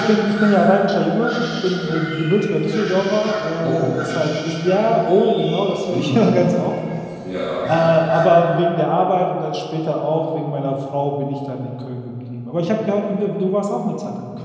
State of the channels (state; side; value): identical; both; correlation 1.00